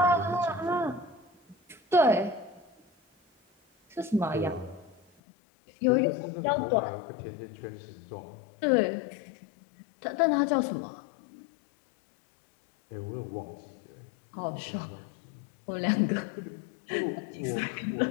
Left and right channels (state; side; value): drops out; right; at 5.0 s